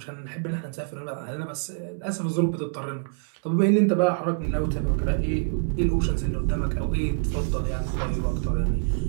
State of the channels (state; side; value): silent; left; 61 dB below the other